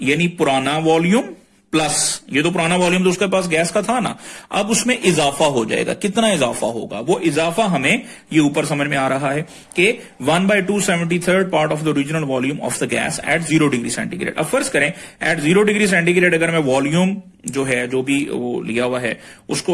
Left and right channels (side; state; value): both; identical; correlation 1.00